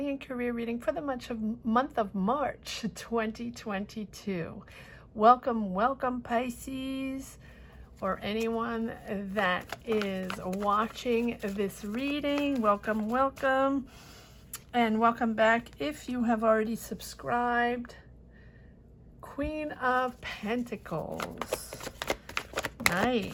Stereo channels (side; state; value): both; identical; correlation 1.00